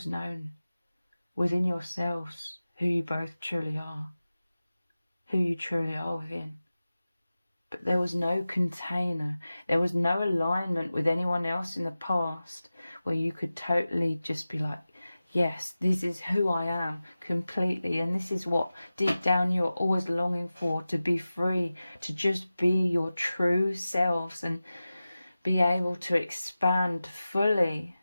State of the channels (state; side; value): inverted; both; correlation -0.95